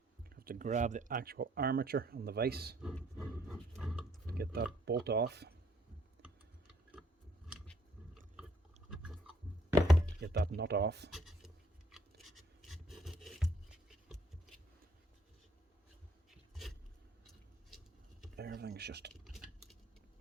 Have to grab the actual armature on the vise. Get that bolt off. Get that nut off. Everything's just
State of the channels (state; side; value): normal; both; correlation 0.66